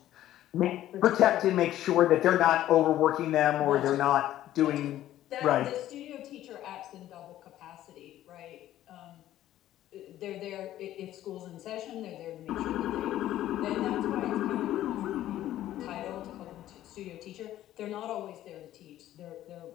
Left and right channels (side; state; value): right; quieter; 13.2 dB